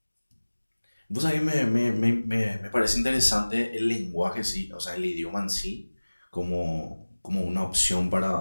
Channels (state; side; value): inverted; both; correlation -1.00